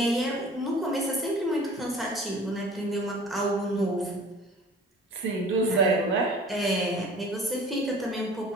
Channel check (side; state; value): both; normal; correlation 0.46